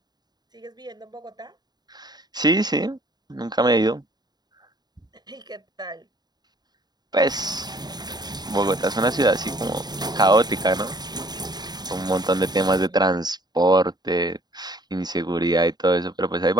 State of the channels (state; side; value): late; left; 0.20 ms